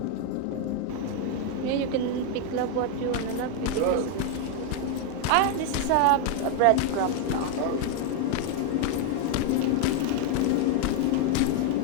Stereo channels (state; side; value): different; both; correlation 0.01